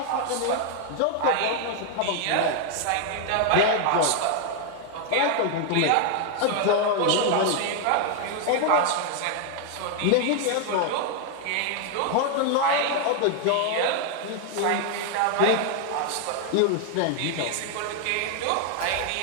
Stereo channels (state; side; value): different; both; correlation 0.00